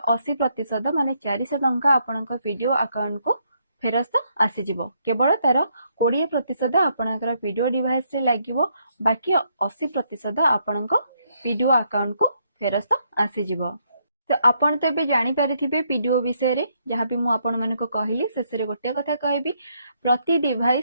80% माने 400 टंका आपनको पीडीओ अकाउंट को फेरस्त आसी जिवो। केवल तार 20% आपनकर पीडीओ डिवाइस रे लागिवो बाकी 80% आपनको पीडीओ अकाउंट को फेरस्त आसी जिवो। तो आपण तो एबे जानि परिथिबे पीडीओ विषय रे जहाँ भी मु आपण मानको कहली शेष रे गोटे कथा कहबी प्रति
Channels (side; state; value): both; inverted; correlation -0.74